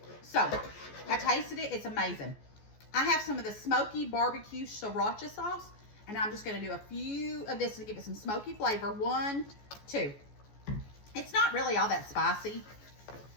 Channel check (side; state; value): right; late; 14 ms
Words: so I tasted it. It's amazing. I have some of the smoky barbecue sriracha sauce, and I'm just going to do a few of this to give it some smoky flavor. 1, 2. It's not really all that spicy.